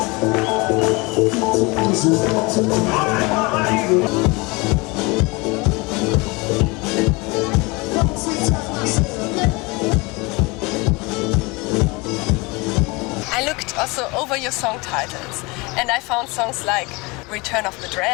I looked also over your song titles and I found songs like Return of the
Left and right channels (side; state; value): right; quieter; 25.9 dB